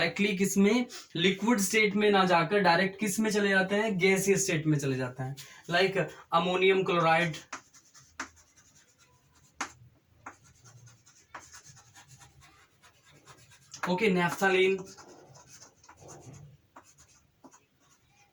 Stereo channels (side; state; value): both; identical; correlation 1.00